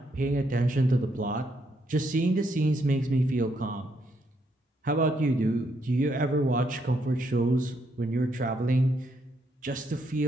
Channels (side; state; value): both; normal; correlation 0.75